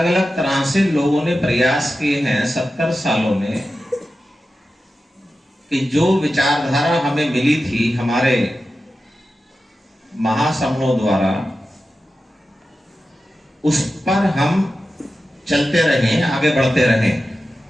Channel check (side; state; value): both; normal; correlation 0.93